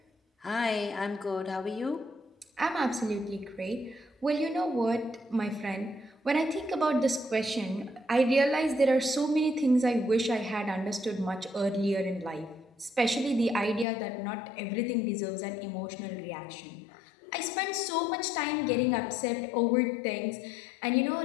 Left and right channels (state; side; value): drops out; right; at 13.9 s